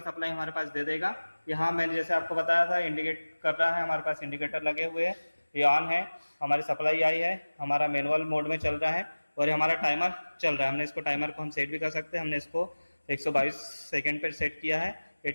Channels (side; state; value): both; inverted; correlation -1.00